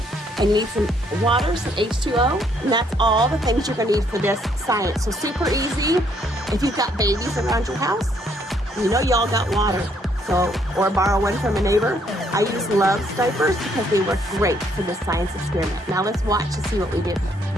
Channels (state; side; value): normal; both; correlation 0.69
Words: And you need some water, some H2O, and that's all the things you're going to need for this science. So super easy. If you've got babies around your house, you know y'all got water. So, or borrow one from a neighbor. I use Love's diapers because they work great for this science experiment. Now let's watch to see what we do.